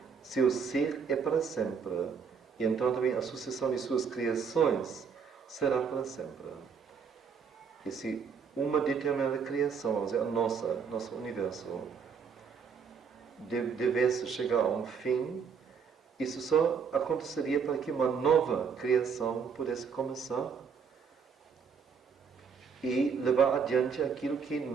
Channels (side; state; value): left; quieter; 6.3 dB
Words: seu ser é para sempre. E então também a sucessão de suas criações será para sempre. E se uma determinada criação, vamos dizer, a nosso universo, devesse chegar a um fim, isso só aconteceria para que uma nova criação pudesse começar e levar adiante aquilo que